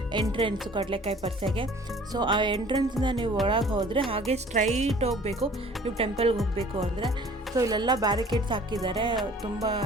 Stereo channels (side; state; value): both; normal; correlation 0.51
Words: ಎಂಟ್ರೆನ್ಸು ಕಡಲೆಕಾಯಿ ಪರ್ಸೆಗೆ. ಸೊ ಆ ಎಂಟ್ರೆನ್ಸಿಂದ ನೀವು ಒಳಗೆ ಹೋದರೆ ಹಾಗೆ ಸ್ಟ್ರೈಟ್ ಹೋಗಬೇಕು ನೀವು ಟೆಂಪಲ್ಗೆ ಹೋಗಬೇಕು ಅಂದರೆ. ಸೊ ಇಲ್ಲೆಲ್ಲ ಬ್ಯಾರಿಕೇಡ್ಸ್ ಹಾಕಿದ್ದಾರೆ, ತುಂಬ